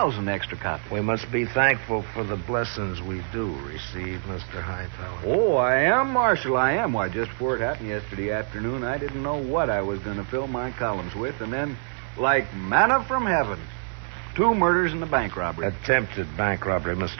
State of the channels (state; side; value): silent; left; 61 dB below the other